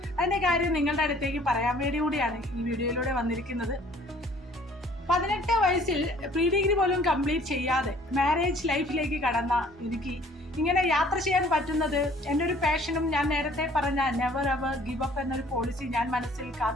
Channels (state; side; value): normal; both; correlation 0.55